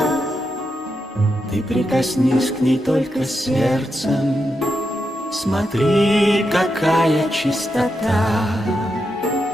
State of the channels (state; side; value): normal; both; correlation 0.85